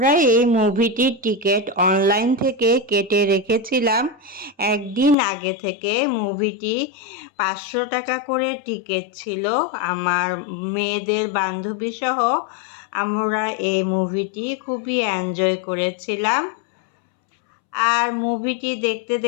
এই মুভিটির টিকিট অনলাইন থেকে কেটে রেখেছিলাম একদিন আগে থেকে। মুভিটি 500 টাকা করে টিকিট ছিল। আমার মেয়েদের বান্ধবী সহ আমরা এই মুভিটি খুবই এনজয় করেছিলাম। আর মুভিটি দেখতে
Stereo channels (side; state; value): right; drops out; at 5.2 s